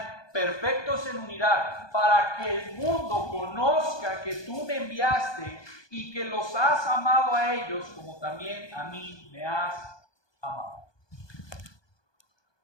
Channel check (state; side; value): late; right; 1.2 ms